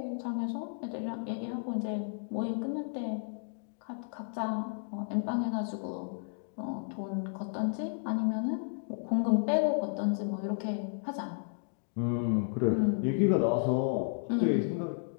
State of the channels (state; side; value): silent; right; digital silence